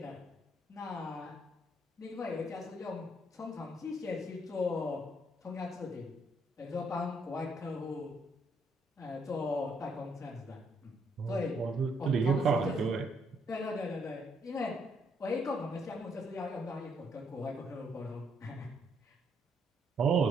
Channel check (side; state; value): both; normal; correlation 0.72